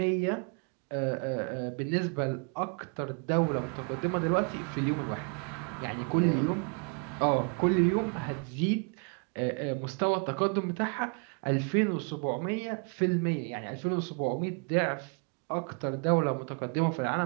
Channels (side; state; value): left; quieter; 37.6 dB